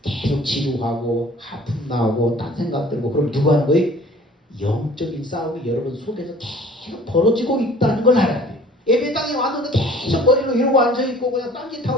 계속 지루하고 하품 나오고 딴 생각 들고 그럼 누가 하는 거예요? 영적인 싸움이 여러분 속에서 계속 벌어지고 있다는 걸 알아야 돼요. 예배당에 왔는데 계속 머리로 이러고 앉아있고 그냥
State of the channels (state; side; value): normal; both; correlation 0.50